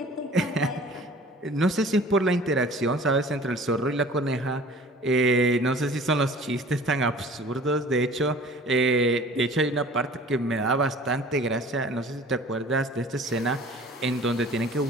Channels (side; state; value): both; normal; correlation 0.47